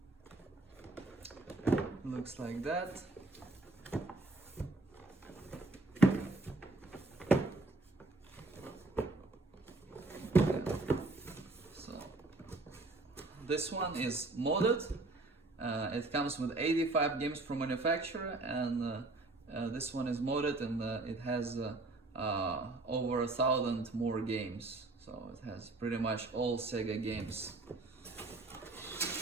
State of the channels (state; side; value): quieter; left; 3.1 dB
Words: Looks like that. So this one is modded. It comes with 85 games from manufacturer, and this one is modded, and it has over 1,000 more games. So it has pretty much all Sega games.